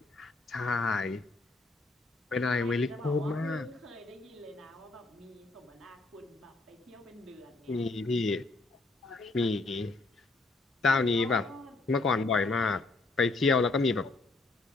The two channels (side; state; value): right; quieter; 3.4 dB